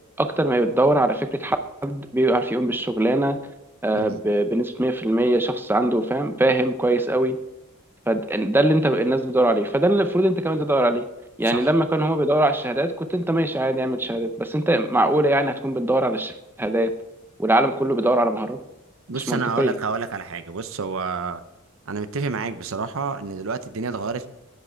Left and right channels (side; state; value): both; normal; correlation 0.69